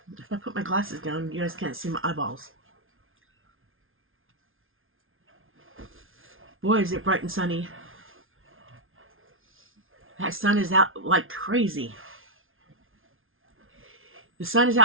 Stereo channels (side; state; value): left; late; 0.60 ms